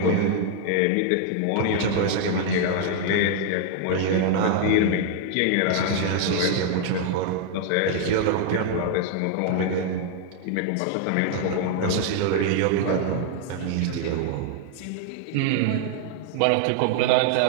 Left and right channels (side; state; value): both; different; correlation 0.00